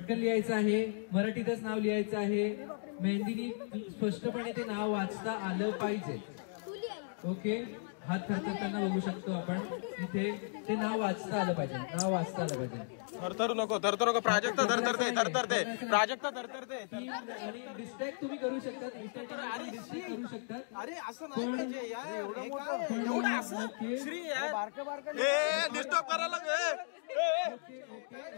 लिहायचं आहे. मराठीतच नाव लिहायचं आहे. मेहंदीनी स्पष्टपणे ते नाव वाचता आलं पाहिजे. ओके हात थरथरताना बघू शकतो आपण. इथे ते नाव वाचता आलं पाहिजे. नाव वाचता आलं पाहिजे. थरथरू नको प्राजक्त धरतरते प्राजक्त धरतरते आणि डिस्ट्रॅक्ट तुम्ही करू शकतात, इतर टीमला तुम्ही डिस्ट्रॅक्ट करू शकतात. अरे असं नाही पाहिजे यार. ओके ए डिस्टर्ब करायला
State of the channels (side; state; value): right; silent; digital silence